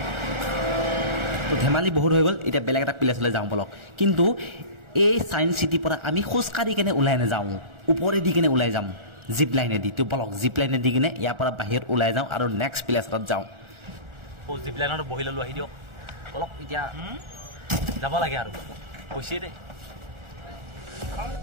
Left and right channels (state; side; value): late; left; 1.4 ms